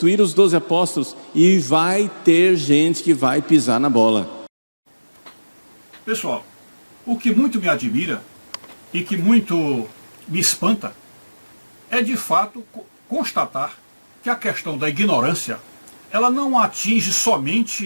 os 12 apóstolos, e vai ter gente que vai pisar na bola. Pessoal, o que muito me admira e que muito me espanta é de fato constatar que a questão da ignorância, ela não atinge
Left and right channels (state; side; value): inverted; both; correlation -1.00